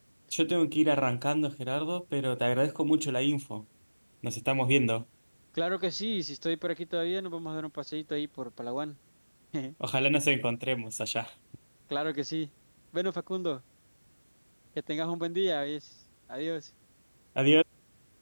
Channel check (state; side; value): inverted; both; correlation -1.00